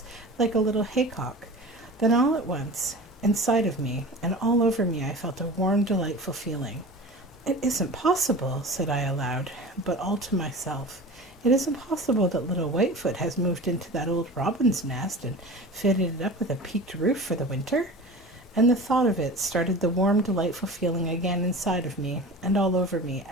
like a little haycock. Then all at once, inside of me and all over me, I felt a warm, delightful feeling. "It isn't possible," said I aloud, but all to myself. "It isn't possible that little Whitefoot has moved into that old robin's nest and fitted it up with a peaked roof for the winter?" And the thought of it started the warm, delightful feeling again inside of me and all over me,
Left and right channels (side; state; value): both; normal; correlation 0.35